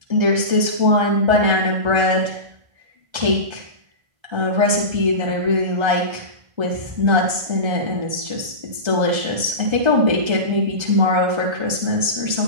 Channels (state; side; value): late; left; 1.3 ms